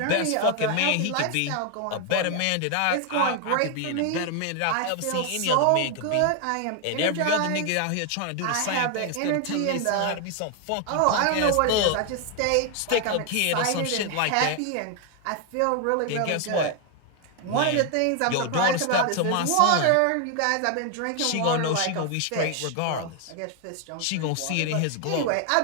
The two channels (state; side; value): different; both; correlation 0.00